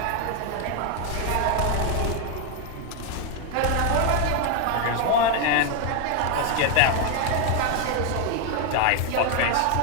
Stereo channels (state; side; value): different; both; correlation 0.01